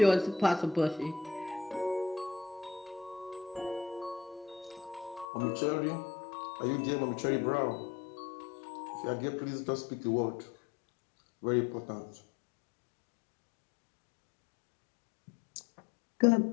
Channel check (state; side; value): drops out; right; at 5.2 s